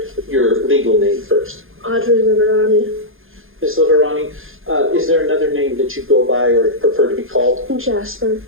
your legal name first? Audrie Liverani. Ms. Liverani, is there another name that you go by or prefer to be called? Jasper.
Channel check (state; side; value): late; left; 0.60 ms